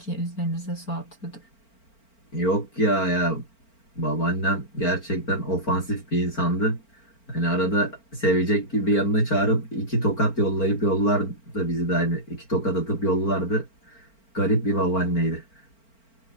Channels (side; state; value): right; late; 4.4 ms